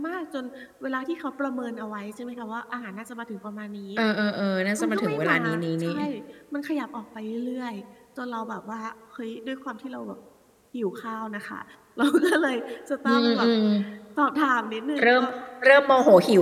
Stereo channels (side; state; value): both; identical; correlation 1.00